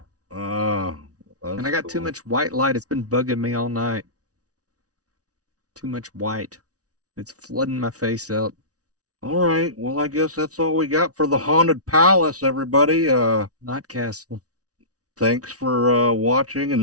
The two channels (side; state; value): left; late; 0.67 ms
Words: And I got too much white light. It's been bugging me all night. Too much white. It's flooding my face out. All right. Well, I guess that's all we got for the Haunted Palace, everybody. Not Castle. Thanks for watching